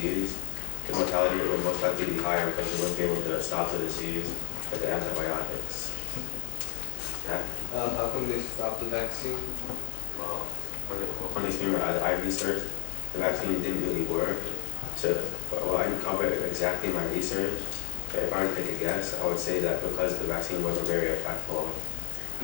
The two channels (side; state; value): right; quieter; 23.9 dB